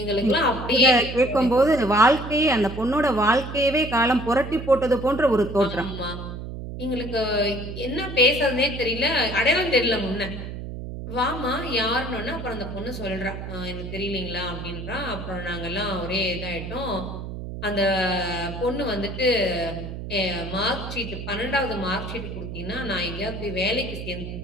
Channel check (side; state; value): right; noise; hum, 8 dB below the sound